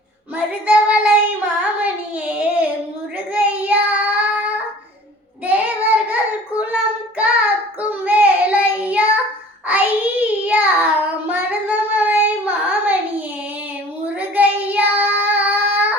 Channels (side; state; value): both; normal; correlation 0.47